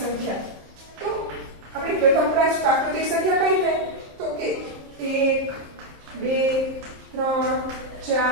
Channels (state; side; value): late; left; 27 ms